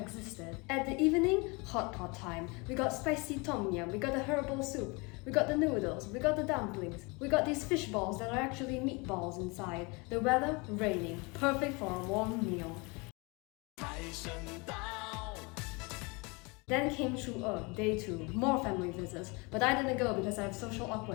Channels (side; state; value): right; quieter; 28.4 dB